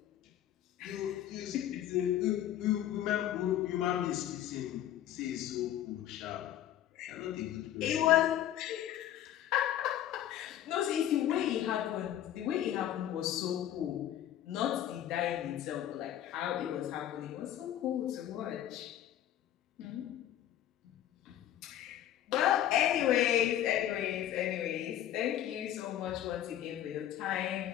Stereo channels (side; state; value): right; quieter; 11.7 dB